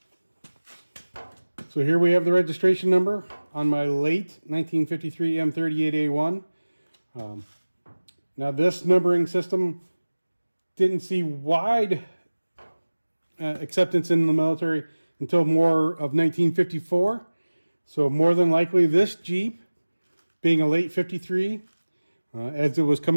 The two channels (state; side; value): inverted; both; correlation -1.00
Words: So here we have the registration number on my late 1953 M38A1. Now this numbering system didn't see wide acceptance in the military until more of 1954. So more than likely this Jeep, being a late 53, as it was